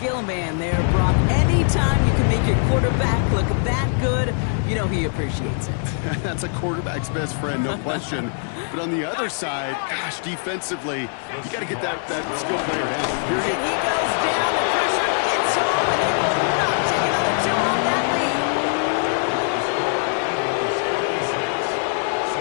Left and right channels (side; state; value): right; silent; 64 dB below the other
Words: man there, Brock. Anytime you can make your quarterback look that good, you know he appreciates it. That's a quarterback's best friend, no question. But on the other side, gosh, defensively, you got to get that skill player down. And he goes down, the pressure gets home, and they will not take another two off that lead.